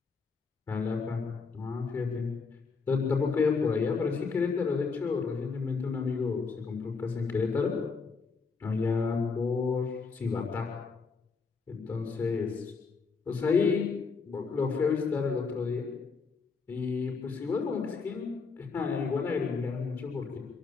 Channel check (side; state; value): right; quieter; 4.8 dB